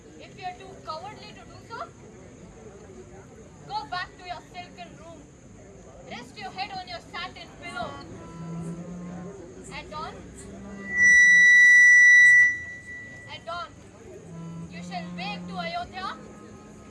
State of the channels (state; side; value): identical; both; correlation 1.00